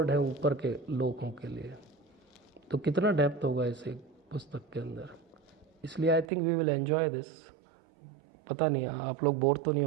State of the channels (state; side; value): drops out; left; at 6.2 s